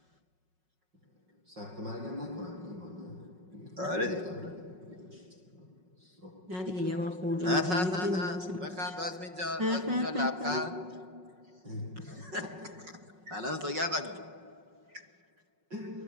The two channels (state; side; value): late; left; 5.4 ms